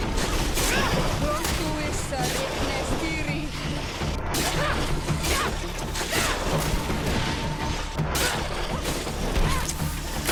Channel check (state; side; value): identical; both; correlation 1.00